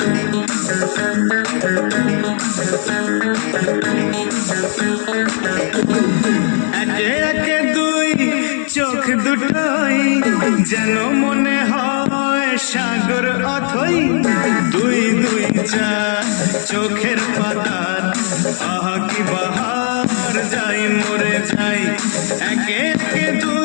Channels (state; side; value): silent; right; digital silence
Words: একে দুই চোখ দুটোই যেন মনে হয় সাগর অথই, দুই দুই চার চোখের পাতার আহা কি বাহার, যাই মরে যাই। একে একে